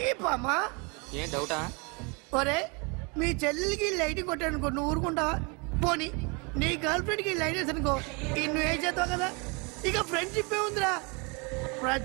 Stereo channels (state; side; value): quieter; left; 30.9 dB